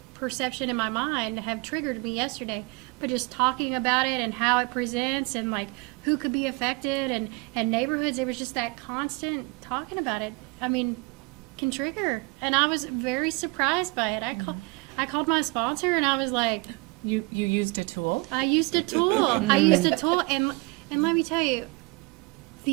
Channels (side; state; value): left; quieter; 27.4 dB